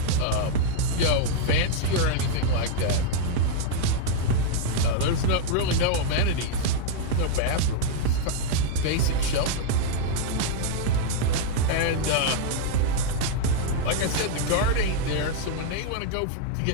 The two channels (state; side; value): different; both; correlation -0.01